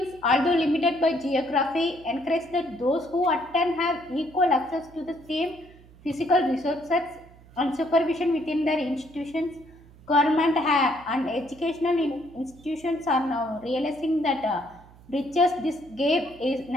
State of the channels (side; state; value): right; noise; hum, 24 dB below the sound